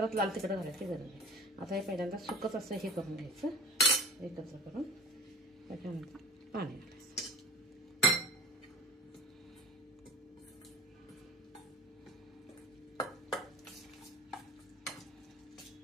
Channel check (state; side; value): normal; both; correlation 0.43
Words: लाल तिखट घालायची गरज नाही। आता हे पहिल्यांदा सुकच असं हे करून घ्यायचं, एकत्र करून त्याच्यानंतर पाणी घालायचं।